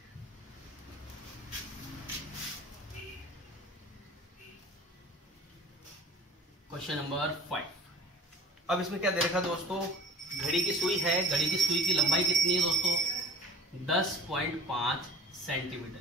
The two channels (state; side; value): normal; both; correlation 0.39